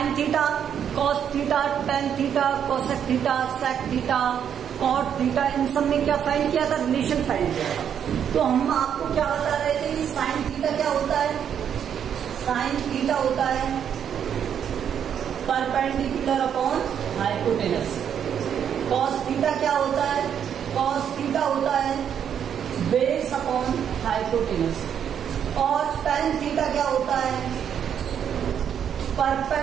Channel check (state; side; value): quieter; left; 8.6 dB